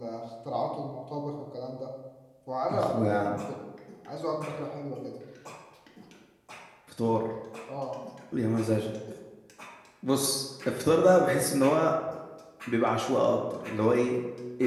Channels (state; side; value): identical; both; correlation 1.00